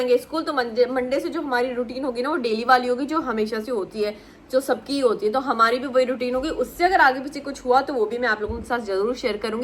स्कूल, तो मंडे से जो हमारी रूटीन होगी ना वो डेली वाली होगी, जो हमेशा से होती है, जो सबकी होती है, तो हमारी भी वही रूटीन होगी। उससे अगर आगे पीछे कुछ हुआ तो वो भी मैं आप लोगों के साथ जरूर शेयर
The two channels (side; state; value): both; identical; correlation 1.00